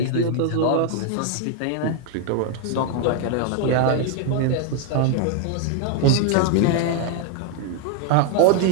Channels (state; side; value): different; both; correlation 0.00